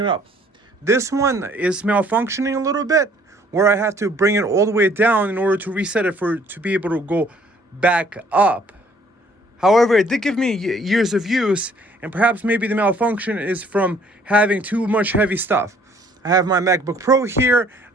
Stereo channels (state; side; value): normal; both; correlation 0.60